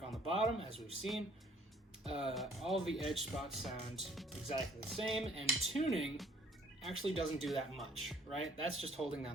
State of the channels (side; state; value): both; normal; correlation 0.59